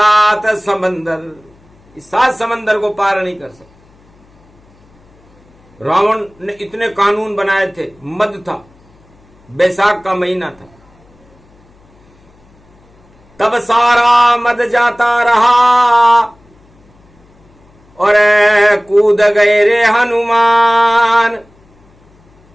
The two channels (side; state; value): left; noise; hum, 30 dB below the sound